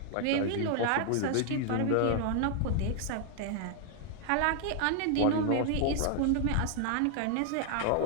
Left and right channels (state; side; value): different; both; correlation 0.00